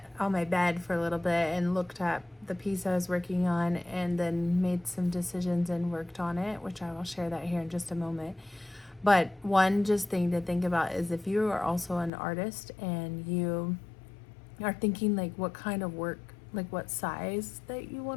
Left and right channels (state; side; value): drops out; right; at 12.1 s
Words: on my bed for a little bit and looked at the piece I was working on, and then made some decisions and worked on it, which I will share that here in just a moment. But one just thing to think about is if you are also an artist and you are thinking like what kind of work, like what size that you